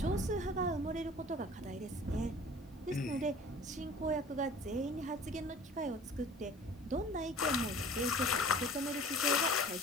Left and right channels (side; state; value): both; normal; correlation 0.44